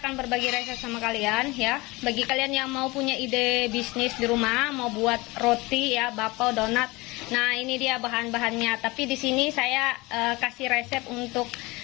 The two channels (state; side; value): quieter; right; 22.8 dB